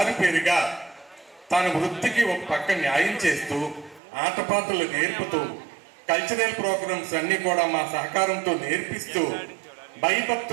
తన వృత్తికి ఒక పక్క న్యాయం చేస్తూ, ఆటపాటలు నేర్పుతూ, కల్చరల్ ప్రోగ్రామ్స్ అన్ని కూడా మా సహకారంతో నేర్పిస్తూ,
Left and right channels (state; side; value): drops out; left; at 4.0 s